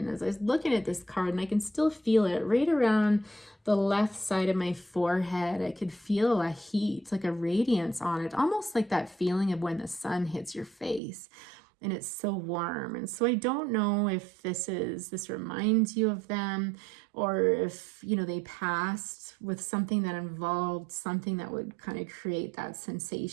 as I was looking at this card, and I can still feel it right around the left side of my forehead, I could feel a heat, like a radiance on it, almost like that feeling of when the sun hits your face and it's so warm. And so I don't know if this reminds you of them, or if they passed with something that involved something that would kind of create that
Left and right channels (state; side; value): drops out; left; at 11.0 s